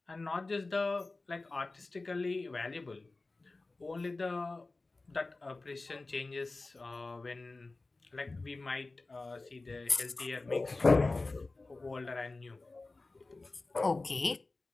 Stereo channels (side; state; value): right; quieter; 3.4 dB